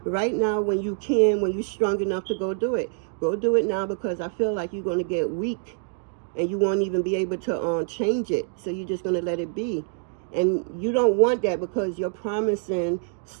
right now when you can, when you're strong enough to go do it. Go do it now, because I feel like you're going to get weak and you won't even be able to change it. So you're just going to let it be. And you don't want that, because you're promising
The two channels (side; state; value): left; silent; 56 dB below the other